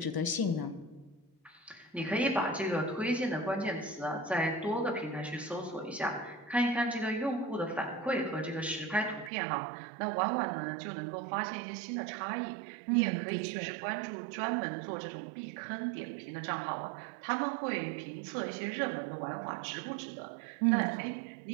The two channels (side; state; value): left; drops out; at 9.3 s